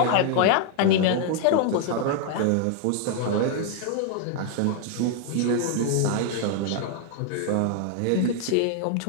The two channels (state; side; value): different; both; correlation 0.00